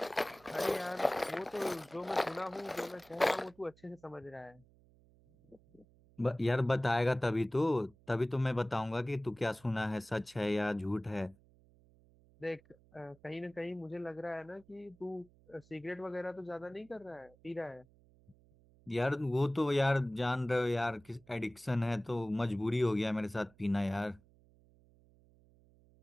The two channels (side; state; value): right; noise; hum, 28 dB below the sound